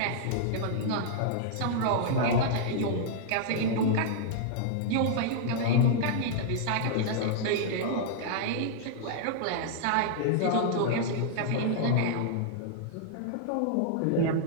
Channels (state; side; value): different; both; correlation -0.01